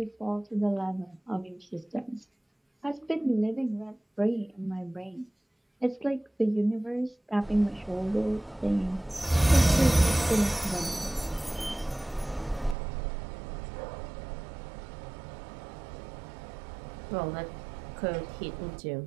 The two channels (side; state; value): left; drops out; at 12.8 s